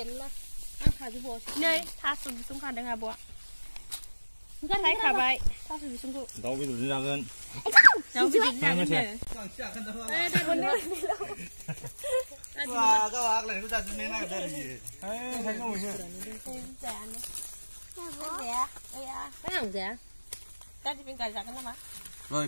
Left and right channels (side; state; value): both; inverted; correlation -1.00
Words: lah. Angkat je bos. नै थास' बिसं खादों आब'आ ओंखाय खाबाय थास' बिसंखौ दाउ बेदरजों जागोन दाउ बेदरजों जागोन दा दिपिं गाय जागोन नामा Rồi,